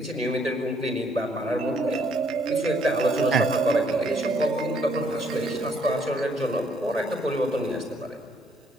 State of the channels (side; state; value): both; normal; correlation 0.67